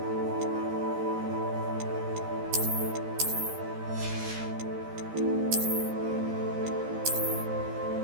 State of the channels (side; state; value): left; late; 13 ms